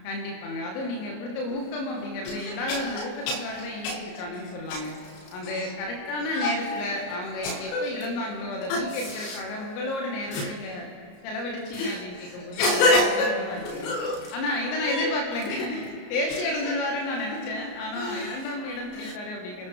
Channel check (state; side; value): late; right; 33 ms